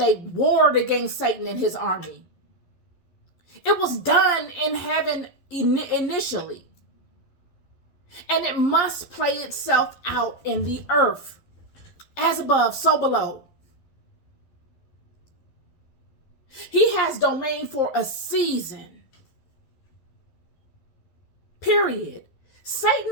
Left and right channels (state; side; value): late; right; 11 ms